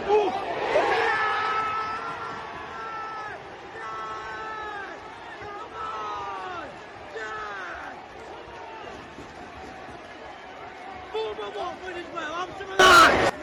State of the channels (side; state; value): both; identical; correlation 1.00